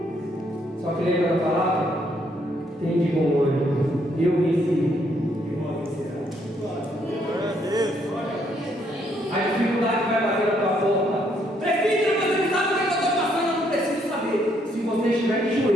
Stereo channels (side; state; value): both; normal; correlation 0.71